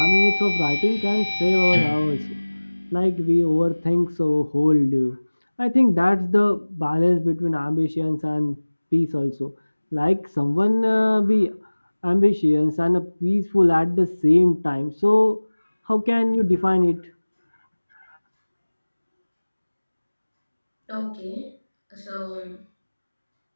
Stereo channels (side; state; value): both; inverted; correlation -1.00